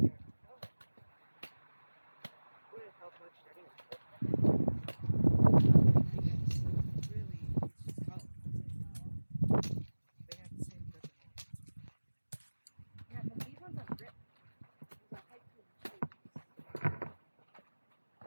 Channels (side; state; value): both; inverted; correlation -1.00